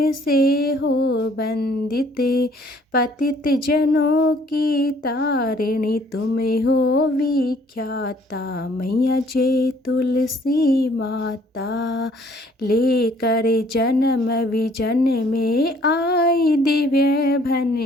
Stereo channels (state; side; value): normal; both; correlation 0.60